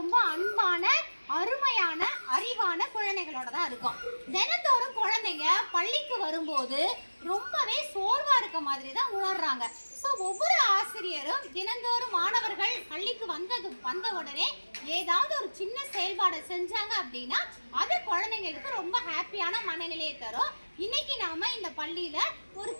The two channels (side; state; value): both; inverted; correlation -1.00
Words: அன்பான அருமையான அறிவான குழந்தைகளோட தான் இருக்கும். தினத்தோறும் குழந்தைங்க பள்ளிக்கு வரும்போது ரொம்பவே சோர்வா இருக்க மாதிரி தான் உணர்றாங்க. ஸோ ஒவ்வொரு ஆசிரியரும் தினந்தோறும் மாணவர்கள் பள்ளிக்கு வந்த உடனே ஏதாவது ஒரு சின்ன செயல்பாடை செஞ்சாங்க அப்படின்னா அது குழந்தைங்களுக்கு ரொம்ப ஹாப்பியான மனநிலையை தரும். இன்னைக்கு நாம இந்த பள்ளியில ஒரு